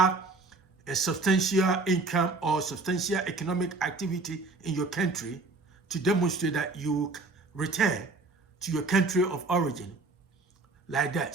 a substantial income or substantial economic activity in your country to demonstrate that you return to your country of origin, like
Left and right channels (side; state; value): left; quieter; 3.5 dB